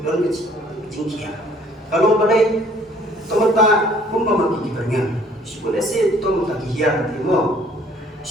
don ke jingkia kalau pada tomata kumba ma ki berngan sibole se tomata ki hiar timo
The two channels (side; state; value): both; normal; correlation 0.57